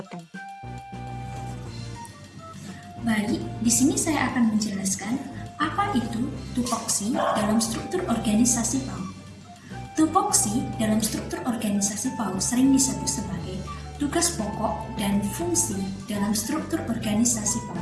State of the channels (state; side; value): identical; both; correlation 1.00